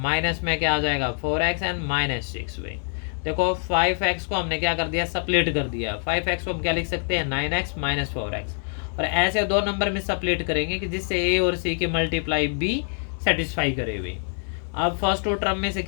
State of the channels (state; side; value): silent; right; 56 dB below the other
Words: में क्या आ जाएगा 4x एंड -6 भाई। देखो 5x को हमने क्या कर दिया सप्लीट कर दिया, 5x को हम क्या लिख सकते हैं 9x - 4x, और ऐसे दो नंबर में सप्लीट करेंगे कि जिससे a और c की मल्टीप्लाई b सेटिस्फाई करे भाई। अब फर्स्ट टू टर्म में से